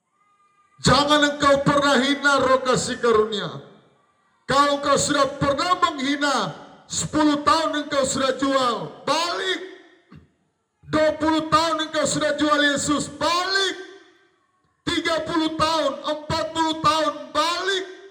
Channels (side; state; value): both; identical; correlation 1.00